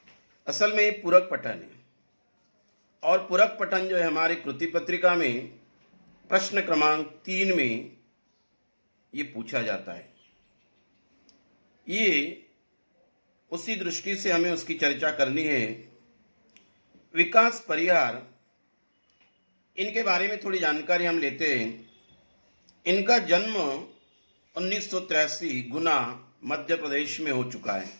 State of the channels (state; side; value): inverted; both; correlation -1.00